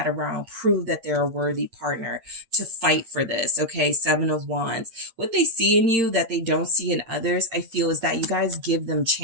around, prove that they're a worthy partner, to fight for this. Okay. Seven of Wands. What they see in you that they don't see in others, I feel, is that you guys give them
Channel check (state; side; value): late; left; 8.8 ms